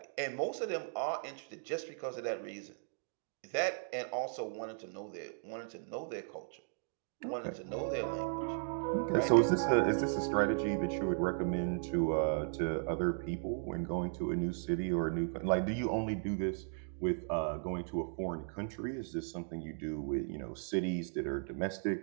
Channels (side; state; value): left; silent; digital silence